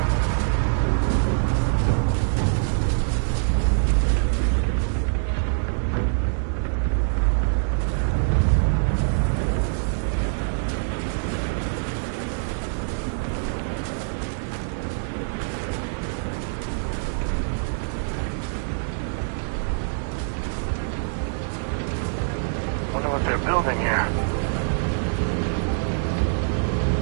Wonder what they're building here.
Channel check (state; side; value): silent; left; digital silence